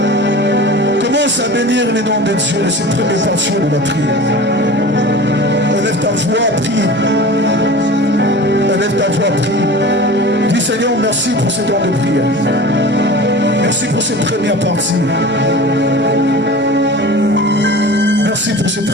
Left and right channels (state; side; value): noise; right; rumble, 29 dB below the sound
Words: Commence à bénir les noms de Dieu, c'est la première portion de la prière. Élève ta voix, prie. Élève ta voix, prie. Dis Seigneur, merci pour ce temps de prière. Merci pour cette première partie. Merci pour cette